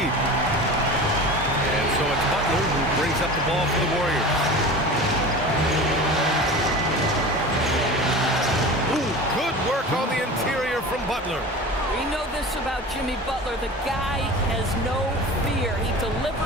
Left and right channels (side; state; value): both; normal; correlation 0.34